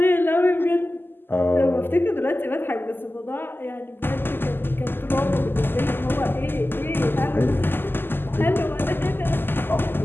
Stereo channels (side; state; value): right; late; 0.098 ms